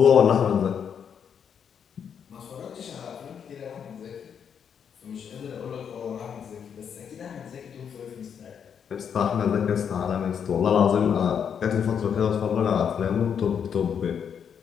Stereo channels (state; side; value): quieter; right; 7.6 dB